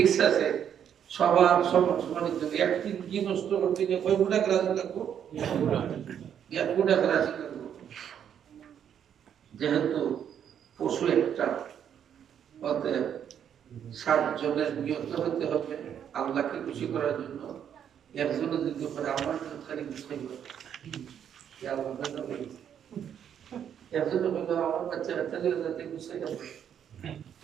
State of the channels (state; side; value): quieter; left; 8.9 dB